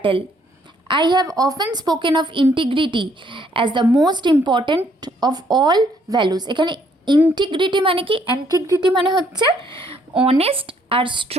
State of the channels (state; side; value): normal; both; correlation 0.67